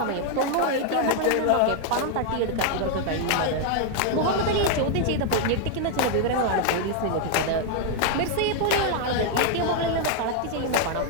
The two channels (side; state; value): both; different; correlation 0.00